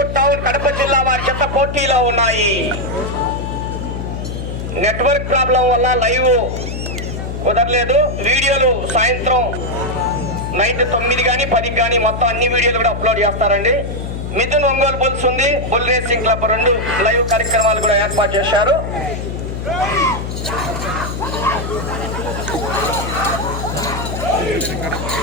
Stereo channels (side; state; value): left; noise; hum, 6 dB below the sound